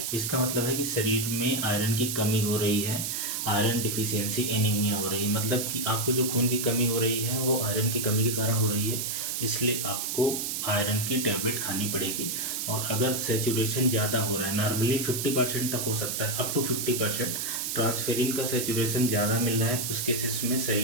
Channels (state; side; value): noise; right; hiss, 2 dB below the sound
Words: इसका मतलब है कि शरीर में आयरन की कमी हो रही है, आयरन डिफिशियंसी एनीमिया हो रही है। मतलब कि आपको जो खून की कमी हो रही है वो आयरन की कमी के कारण हो रही है, इसलिए आपको आयरन की टैबलेट खानी पड़ेगी। और अगर सैचुरेशन ज़्यादा हो रहा है, नॉर्मली 50% तक हो सकता है, अप टू 50% ट्रांसफेरिन का सैचुरेशन ज़्यादा मिल रहा है, उस केसेस में